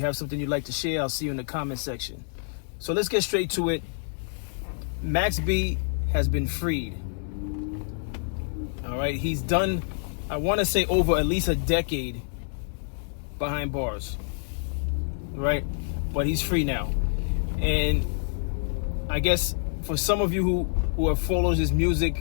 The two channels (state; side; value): silent; right; 60 dB below the other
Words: have something you'd like to share, I'll see you in the comment section. So let's get straight to it. Max B has been freed. All right, he's done, I want to say, over at least a decade behind bars, right? But he's free now. And I guess for some of you who have followed his